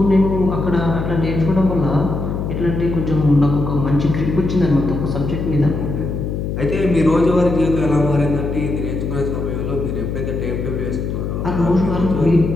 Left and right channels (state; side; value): noise; left; hum, 3 dB below the sound